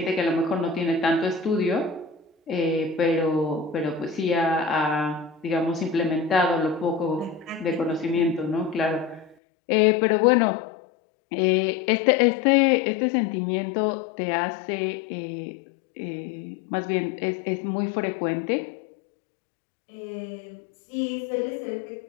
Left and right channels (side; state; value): right; drops out; at 9.3 s